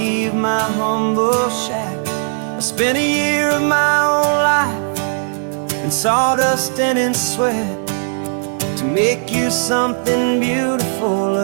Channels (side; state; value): left; silent; digital silence